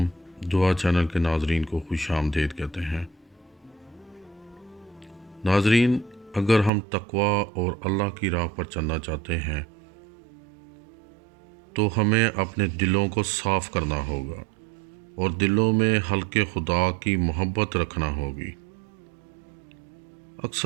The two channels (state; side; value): drops out; left; at 6.7 s